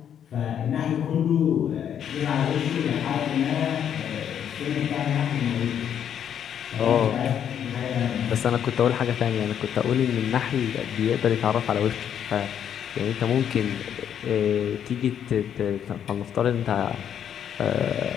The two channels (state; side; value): quieter; right; 9.1 dB